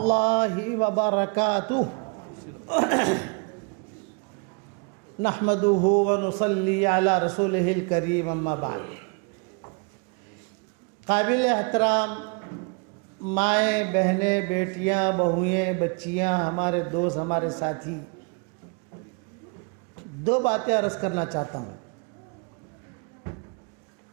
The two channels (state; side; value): quieter; left; 33.7 dB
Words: وبرکاتہ نحمدہ ونصلی علی رسولہ الکریم اما بعد۔ قابل احترام مائیں، بہنیں، بیٹیاں، بہوئیں، بچیاں، ہمارے دوست، ہمارے ساتھی، دو باتیں عرض کرنا چاہتا ہوں۔